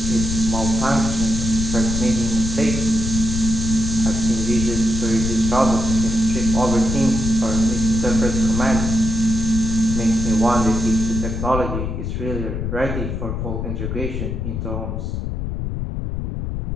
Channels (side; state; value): left; noise; rumble, 3 dB below the sound